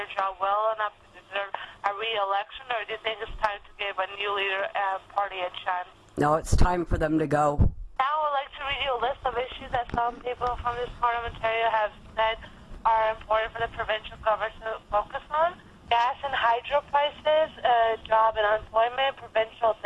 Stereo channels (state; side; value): identical; both; correlation 1.00